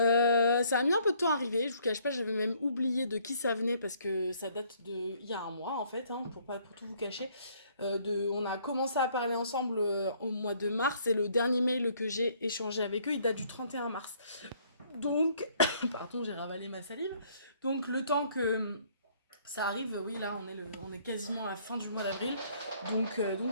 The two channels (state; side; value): inverted; both; correlation -0.63